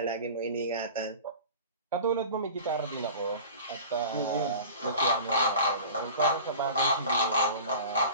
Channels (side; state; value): both; inverted; correlation -0.39